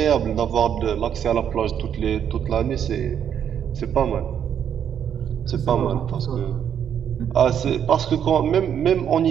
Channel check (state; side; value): quieter; left; 8.8 dB